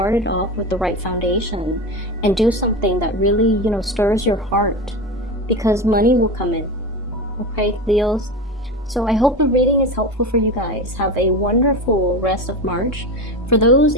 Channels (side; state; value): both; normal; correlation 0.24